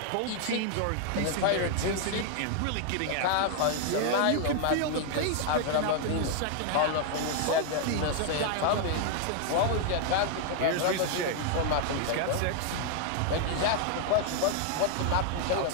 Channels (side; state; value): both; different; correlation 0.00